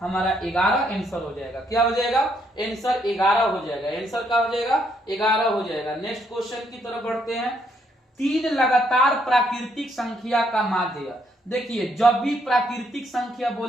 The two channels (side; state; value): both; normal; correlation 0.72